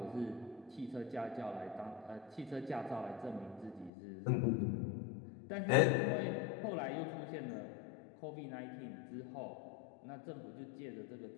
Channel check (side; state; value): right; drops out; at 3.9 s